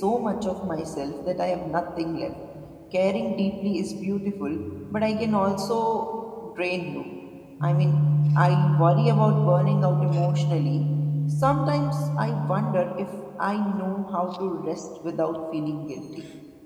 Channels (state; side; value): identical; both; correlation 1.00